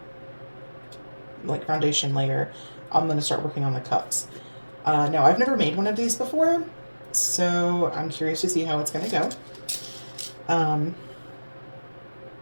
like foundation layer, I'm going to start working on the cups. Now, I've never made one of these before, so I'm curious to see how it's going to go.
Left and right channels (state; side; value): inverted; both; correlation -1.00